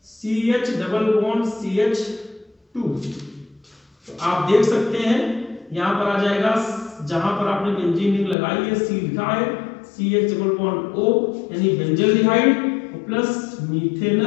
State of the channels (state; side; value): drops out; right; at 8.3 s